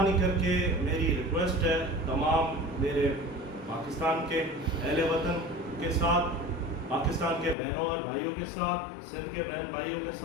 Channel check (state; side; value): drops out; right; at 7.6 s